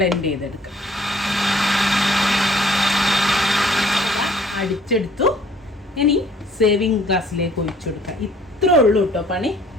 ചെയ്തെടുക്കാം. അടിച്ചെടുത്തു. ഇനി സേവിങ് ഗ്ലാസ്സിലേക്ക് ഒഴിച്ചു കൊടുക്കാം. ഇത്രേ ഉള്ളൂ കേട്ടോ പണി.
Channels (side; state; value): both; normal; correlation 0.57